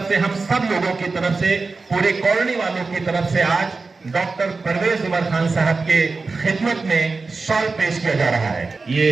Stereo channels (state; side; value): quieter; left; 4.0 dB